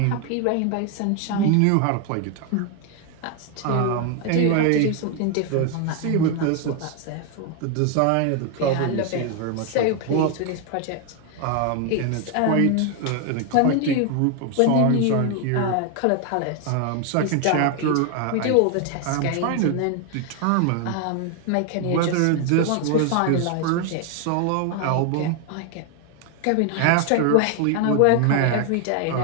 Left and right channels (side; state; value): both; different; correlation 0.01